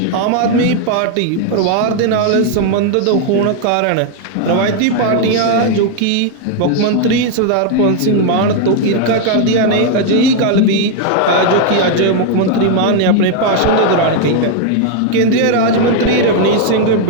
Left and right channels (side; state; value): both; different; correlation 0.00